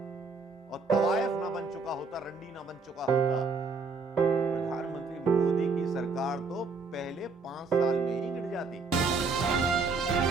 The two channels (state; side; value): quieter; left; 4.2 dB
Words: और तवायफ ना बन चुका होता, रंडी ना बन चुका होता, प्रधानमंत्री मोदी की सरकार तो पहले 5 साल में ही गिर जाती।